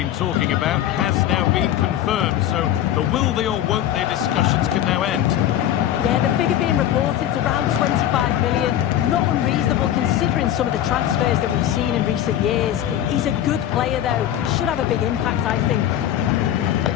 talking about has now been confirmed, so the will they or won't they discussions can now end. Yeah, the figure being reported is around 25 million. Not unreasonable considering some of the transfers that we've seen in recent years. He's a good player, though. Should have a big impact, I think.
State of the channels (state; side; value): quieter; right; 11.5 dB